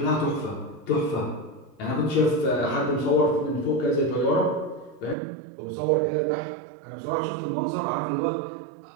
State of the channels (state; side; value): drops out; left; at 5.2 s